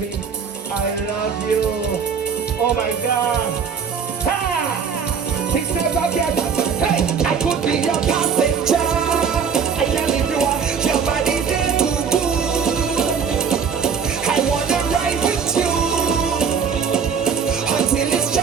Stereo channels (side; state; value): left; quieter; 6.5 dB